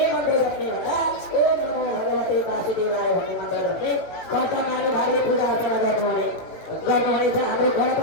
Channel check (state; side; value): late; right; 18 ms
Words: मन्त्र जप्ने भन्दा ओम नमो भगवते वासुदेवाय भन्ने मन्त्र जप्ने कर्ता महानुभावले पूजा अर्चना गर्नुहुनेछ। हाम्रो